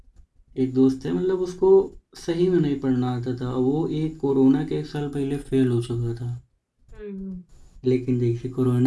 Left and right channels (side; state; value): both; identical; correlation 1.00